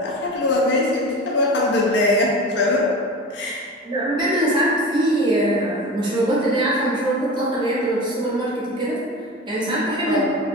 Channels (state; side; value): normal; both; correlation 0.31